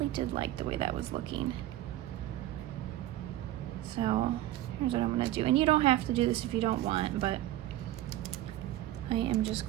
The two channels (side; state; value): left; quieter; 14.6 dB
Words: did like the way that was looking. So here's what I'm going to do. And you don't have to do this if you don't want, but I am just